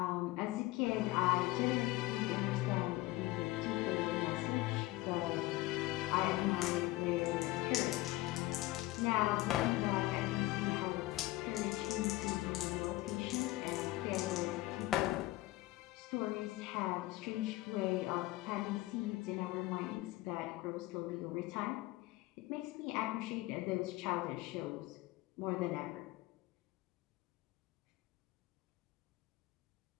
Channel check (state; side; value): quieter; right; 18.5 dB